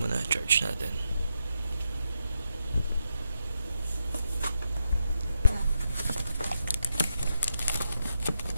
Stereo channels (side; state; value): both; inverted; correlation -0.84